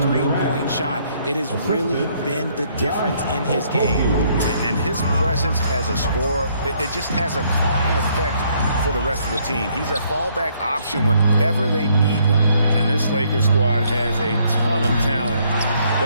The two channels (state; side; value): inverted; both; correlation -0.68